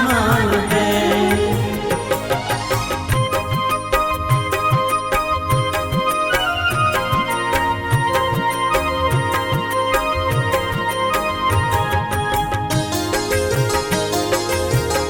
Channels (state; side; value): identical; both; correlation 1.00